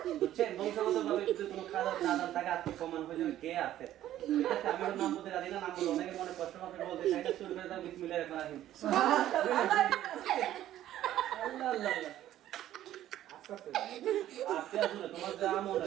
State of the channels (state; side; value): quieter; left; 12.8 dB